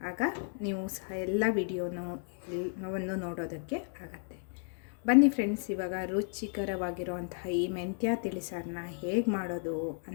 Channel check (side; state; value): right; silent; 56 dB below the other